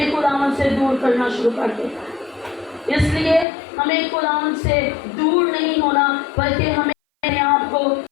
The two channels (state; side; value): drops out; right; at 3.5 s